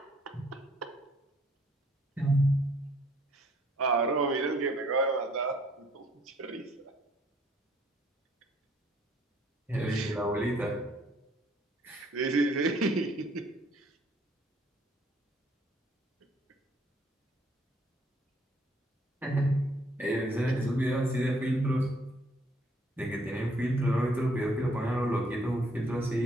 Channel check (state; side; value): normal; both; correlation 0.64